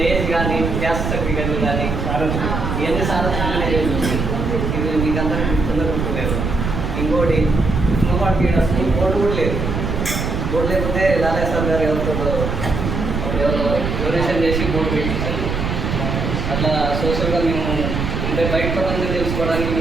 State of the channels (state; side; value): noise; right; rumble, 2 dB below the sound